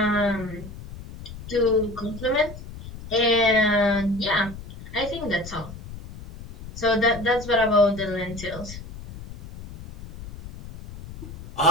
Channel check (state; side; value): noise; left; rumble, 14 dB below the sound